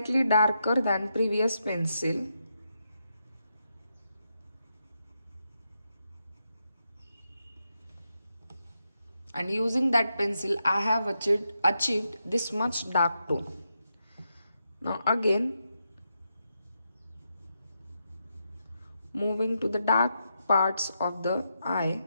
darker than previous pencil. And using that pencil I have achieved this much dark tone. Now again, moving to the dark parts of the eye.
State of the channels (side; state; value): both; inverted; correlation -0.84